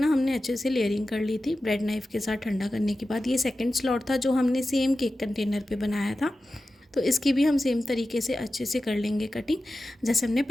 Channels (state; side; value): normal; both; correlation 0.94